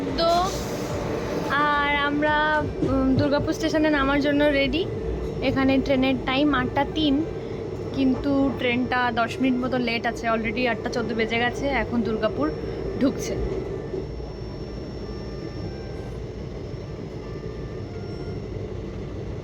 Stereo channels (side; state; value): both; identical; correlation 1.00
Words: আর আমরা দুর্গাপুর স্টেশনে নামার জন্য রেডি। এখানে ট্রেনের টাইম 8:03, কিন্তু ট্রেনটা 10 মিনিট মতো লেট আছে। অলরেডি 8:14 বেজে গেছে, এখন দুর্গাপুর ঢুকছে।